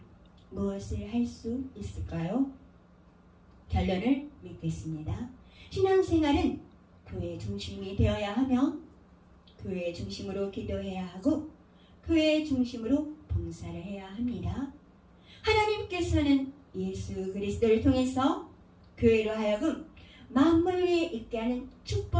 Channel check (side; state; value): both; identical; correlation 1.00